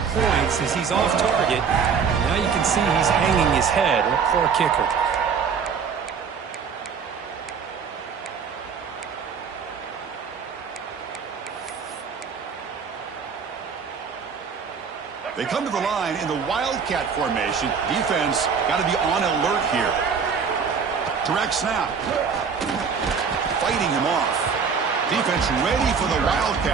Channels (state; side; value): quieter; left; 6.2 dB